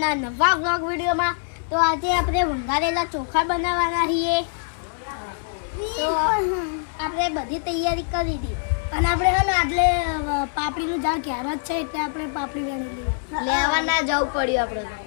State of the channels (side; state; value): right; silent; digital silence